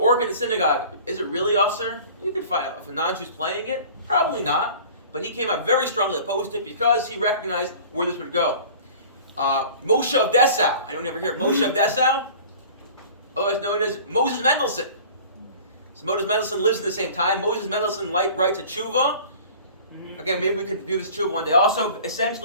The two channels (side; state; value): both; inverted; correlation -0.44